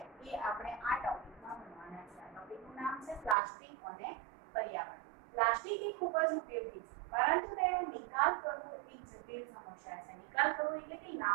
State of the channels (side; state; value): left; drops out; at 3.4 s